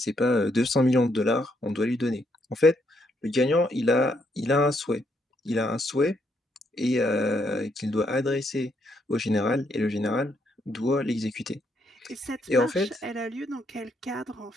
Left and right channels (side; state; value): both; normal; correlation 0.75